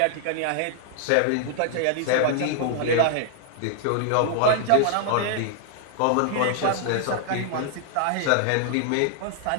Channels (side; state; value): both; different; correlation 0.00